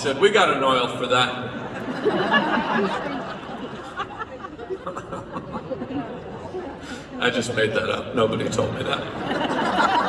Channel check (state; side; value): identical; both; correlation 1.00